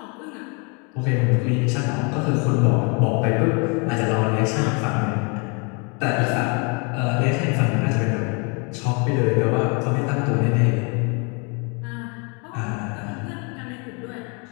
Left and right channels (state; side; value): quieter; right; 33.6 dB